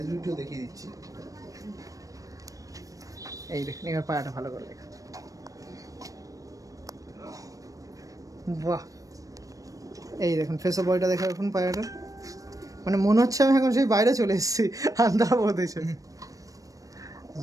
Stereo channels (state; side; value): late; left; 0.16 ms